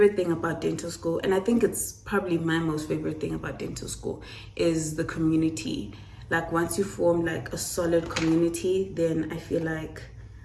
thing about dental school, and I think it's probably my most favorite thing about dental school, is the community. Like once you form like a solid community, then I feel like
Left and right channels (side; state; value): both; identical; correlation 1.00